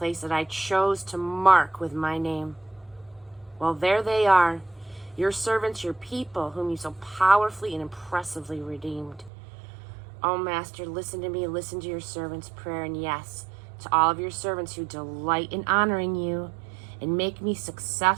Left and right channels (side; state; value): left; drops out; at 9.3 s